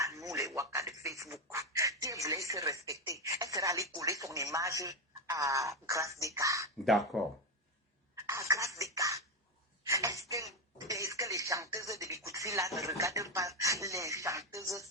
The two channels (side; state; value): both; normal; correlation 0.09